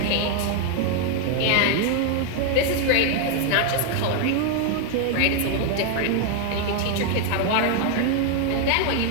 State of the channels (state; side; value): different; both; correlation 0.00